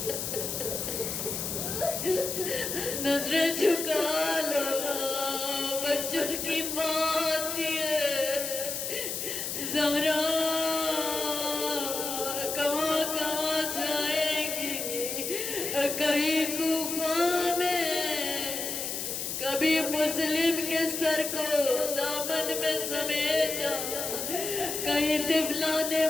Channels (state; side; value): noise; left; hiss, 3 dB below the sound